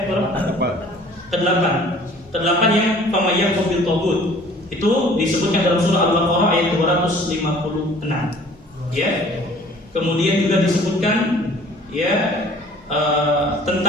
Berapa? Ke-8. Ke-8 yang famayyak bil tagut. Itu disebutkan dalam surah Al-Baqarah ayat 256. Ya. Kemudian juga disebutkan ya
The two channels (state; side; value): normal; both; correlation 0.51